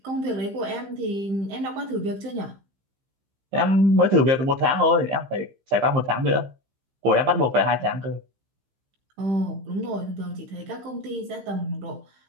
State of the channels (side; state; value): left; late; 15 ms